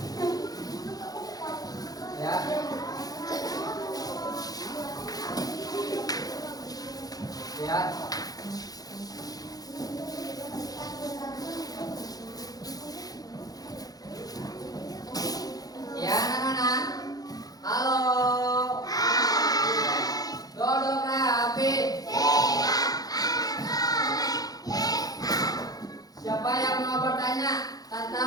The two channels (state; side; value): late; right; 0.18 ms